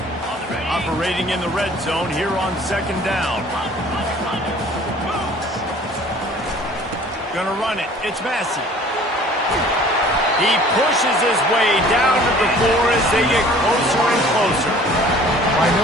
Operating in the red zone here on 2nd down. Gonna run it. It's Massey. He pushes his way down to the floor as they get closer and closer. I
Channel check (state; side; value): normal; both; correlation 0.50